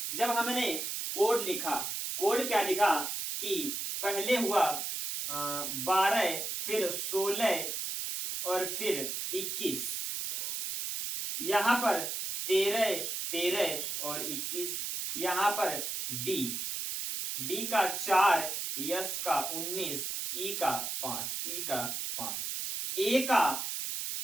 जब हमने कोड लिखा, कोड क्या लिखा कि पहले हुआ 12, फिर 16 और फिर 21, यहां पर 13 और 21, यहां पर डी का 4, यस का 19, ई का 5, ए का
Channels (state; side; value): noise; right; hiss, 3 dB below the sound